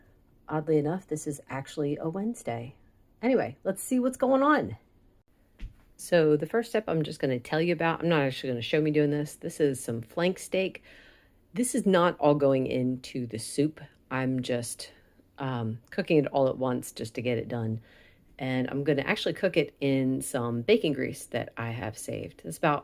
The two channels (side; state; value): both; identical; correlation 1.00